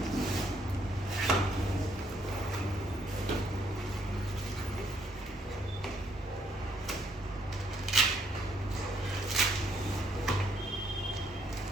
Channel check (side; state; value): both; normal; correlation 0.71